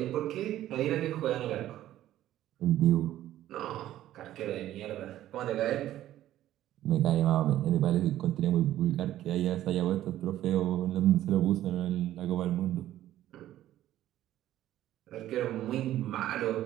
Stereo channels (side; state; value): left; quieter; 13.2 dB